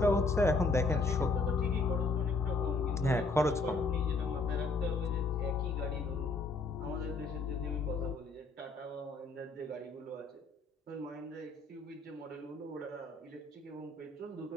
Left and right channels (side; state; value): right; quieter; 3.5 dB